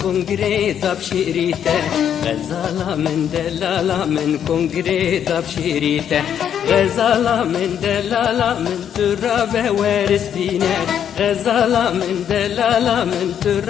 كونغري دبشيريته غزالا من دلالا من كونغري دبشيريته غزالا من دلالا من ترابه ورث فينا غزالا من دلالا من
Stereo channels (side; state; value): right; quieter; 9.1 dB